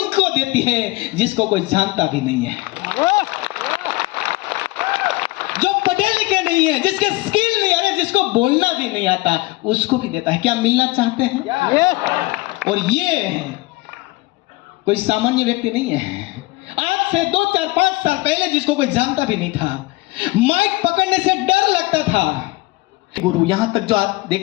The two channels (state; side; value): quieter; right; 21.5 dB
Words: देती है जिसको कोई जानता भी नहीं है, जो पढ़े लिखे नहीं है, जिसके स्किल नहीं है, जिसको बोलना भी नहीं आता, उसको भी देता है। क्या मिलना चाहते हैं? और ये कोई सामान्य व्यक्ति नहीं है। आज से 2, 4, 5 साल पहले जिसको कोई जानता भी नहीं था, माइक पकड़ने से डर लगता था। गुरु, यहां तक जो आप